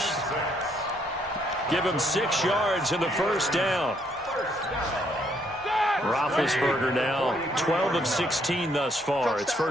Give him 6 yards in the first down. Roethlisberger now 12 of 16 thus far. It's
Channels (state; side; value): normal; both; correlation 0.70